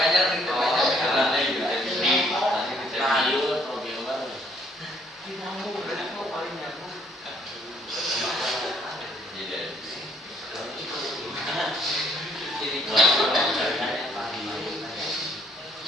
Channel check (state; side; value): normal; both; correlation 0.65